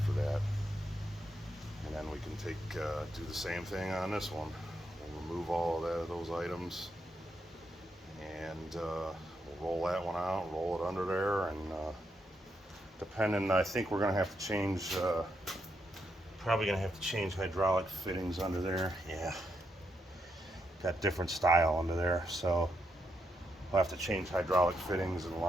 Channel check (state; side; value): normal; both; correlation 0.81